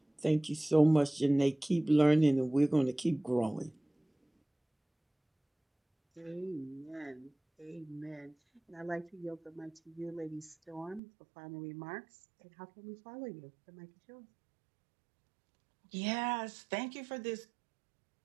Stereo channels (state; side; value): drops out; left; at 11.0 s